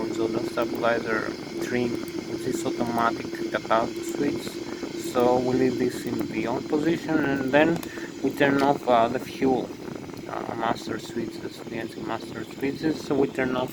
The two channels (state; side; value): identical; both; correlation 1.00